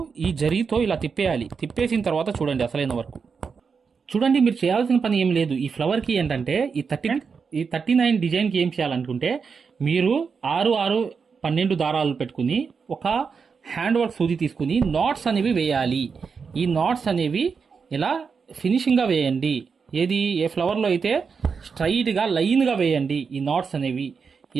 ఈ జరీతో ఇలా తిప్పేయాలి. తిప్పేసిన తర్వాత చూడండి అసలైన వరకు. చూడండి, మీరు చేయాల్సిన పని ఏం లేదు. ఈ ఫ్లవర్కి ఏంటంటే ఈ 39 డిజైన్కి ఏం చేయాలనుకుంటే మీరు 6, 12 దారాలు పెట్టుకుని ఒక హ్యాండ్ వర్క్ సూది తీసుకుని నాట్స్ అనేవి వేయాలి. ఈ నాట్స్ అనేవి ఇలా ఫినిషింగ్గా వేయండి. ఏది ఏ ఫ్లవర్లో అయితే స్ట్రైట్గా లైన్గా వేయండి. ఈ నాట్స్ అనేవి ఈ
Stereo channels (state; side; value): quieter; left; 5.6 dB